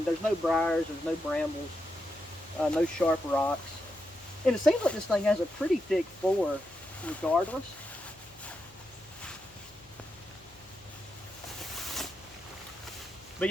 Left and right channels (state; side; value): noise; left; hum, 27 dB below the sound